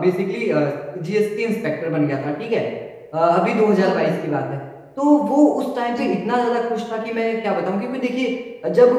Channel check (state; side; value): identical; both; correlation 1.00